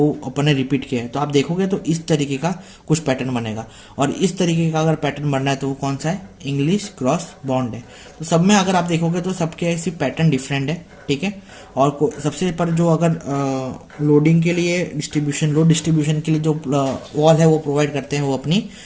अपन ने रिपीट किया है। तो आप देखोगे तो इस तरीके का कुछ पैटर्न बनेगा। और इस तरीके का अगर पैटर्न बनना है तो वो कौन सा है, इंग्लिश क्रॉस बॉन्ड है। तो सब में अगर आप देखोगे तो सबके ऐसी पैटर्न डिफरेंट है, ठीक है। और सबसे पर जो अगर लोडिंग के लिए डिस्ट्रीब्यूशन, लोड डिस्ट्रीब्यूशन के लिए जो वॉल है वो प्रोवाइड करते हैं, वो अपनी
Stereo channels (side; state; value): both; identical; correlation 1.00